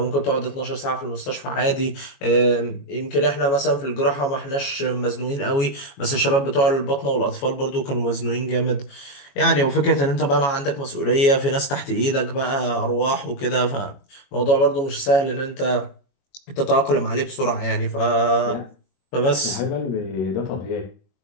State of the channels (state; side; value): late; right; 21 ms